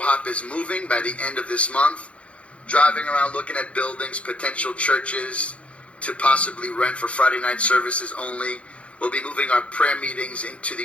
is moving by the end of this month. Driving around looking at buildings, potential churches to possibly rent for Friday night services only. We'll be moving our prayer meetings into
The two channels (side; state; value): right; late; 0.062 ms